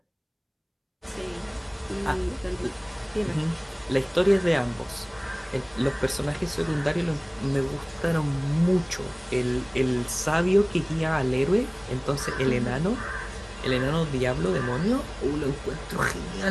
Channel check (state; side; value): identical; both; correlation 1.00